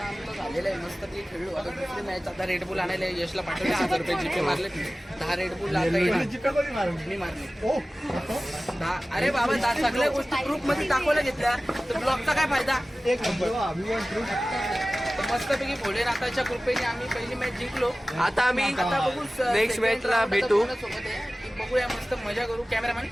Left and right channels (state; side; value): normal; both; correlation 0.97